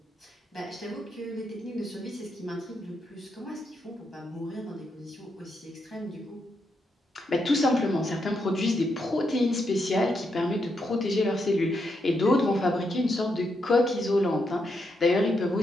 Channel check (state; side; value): normal; both; correlation 0.81